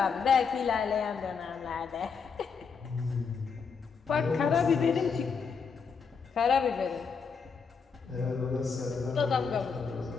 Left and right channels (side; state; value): right; quieter; 5.7 dB